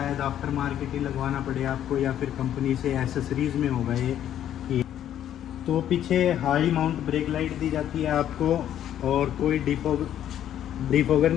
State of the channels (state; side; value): quieter; right; 10.9 dB